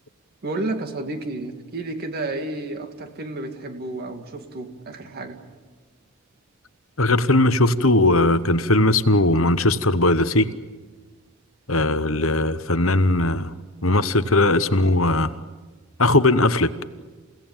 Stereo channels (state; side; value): normal; both; correlation 0.26